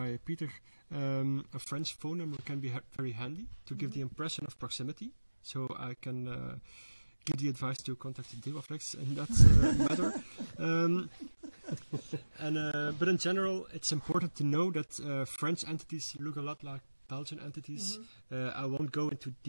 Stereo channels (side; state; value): both; inverted; correlation -1.00